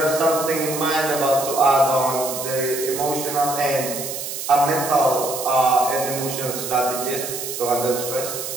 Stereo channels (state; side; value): noise; right; hiss, 6 dB below the sound